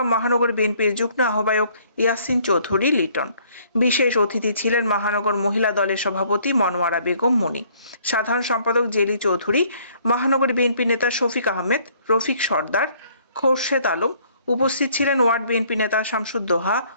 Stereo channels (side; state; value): both; inverted; correlation -0.61